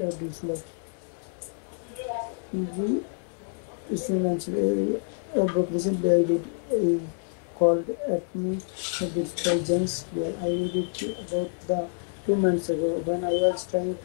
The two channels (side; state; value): right; silent; digital silence